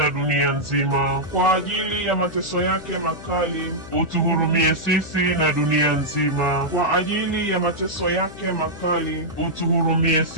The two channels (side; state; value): left; noise; hum, 16 dB below the sound